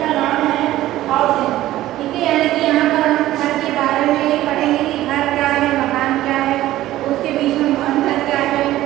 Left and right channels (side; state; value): left; quieter; 14.9 dB